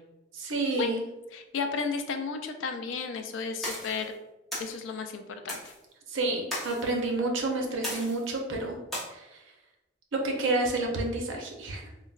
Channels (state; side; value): normal; both; correlation 0.16